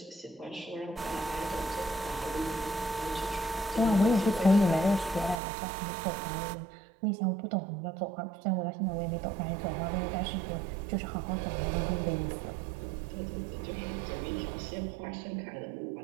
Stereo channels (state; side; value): drops out; left; at 5.4 s